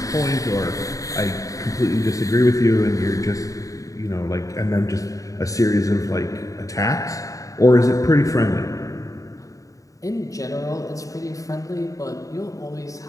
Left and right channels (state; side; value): late; right; 0.16 ms